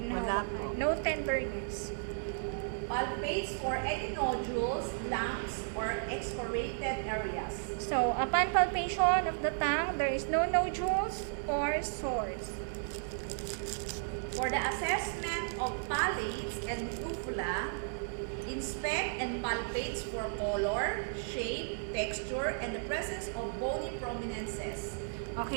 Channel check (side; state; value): left; silent; 55 dB below the other